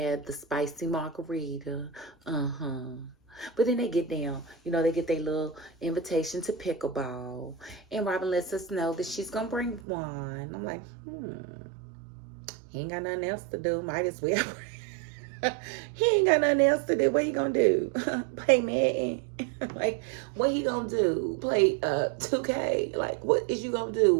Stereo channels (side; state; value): left; drops out; at 9.8 s